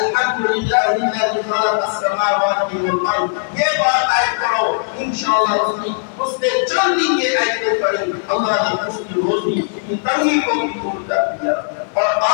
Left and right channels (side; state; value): right; silent; 56 dB below the other